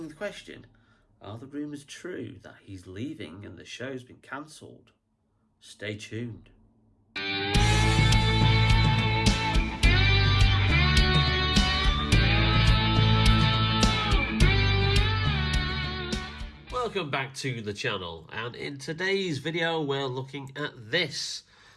the question, are the rumours true that he's leaving and the show's been cancelled? Stay tuned. Welcome back to the channel, and in today's video we're looking at this,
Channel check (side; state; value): both; identical; correlation 1.00